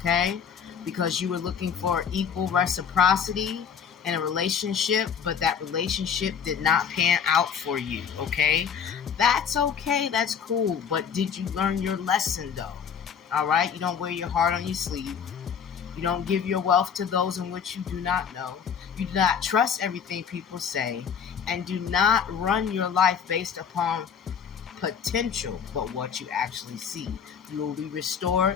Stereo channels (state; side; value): quieter; right; 7.3 dB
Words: because you were looking for equal reciprocity in a relationship, but that relationship did not pan out for you, okay? That's okay, that's cool, but did you learn your lesson though? All right, you don't wear your heart on your sleeve. You don't give your wealth to those in which you do not know. You do not trust everything people say, and do not run your life based upon potential, but what you actually see. You will be